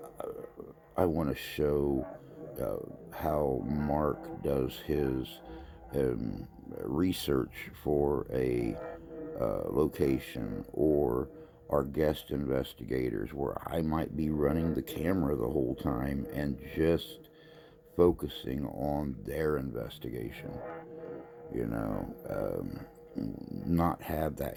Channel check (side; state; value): both; identical; correlation 1.00